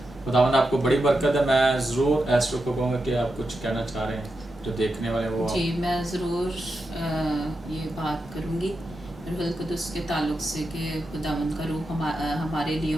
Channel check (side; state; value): both; normal; correlation 0.88